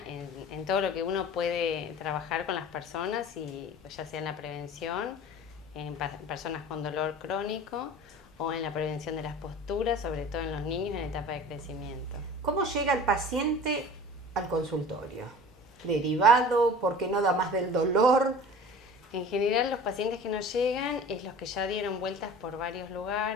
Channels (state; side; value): normal; both; correlation 0.41